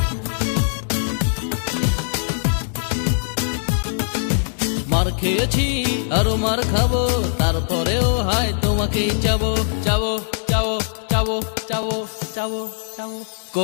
মার খেয়েছি আরো মার খাবো, তারপরেও হয় তোমাকেই চাবো। চাবো চাবো চাবো চাবো চাবো চাবো,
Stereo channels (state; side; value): silent; right; digital silence